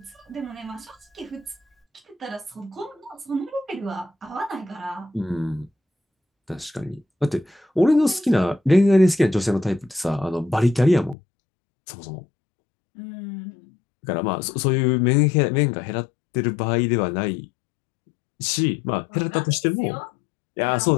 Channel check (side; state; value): right; drops out; at 11.2 s